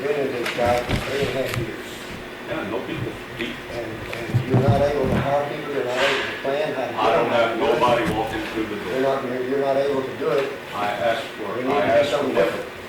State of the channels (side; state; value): both; identical; correlation 1.00